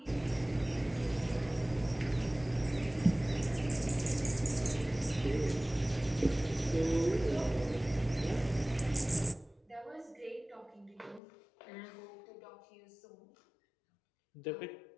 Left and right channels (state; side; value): drops out; right; at 11.2 s